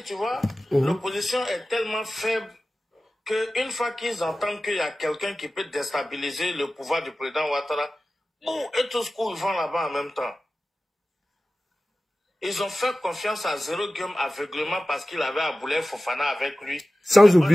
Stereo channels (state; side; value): normal; both; correlation 0.95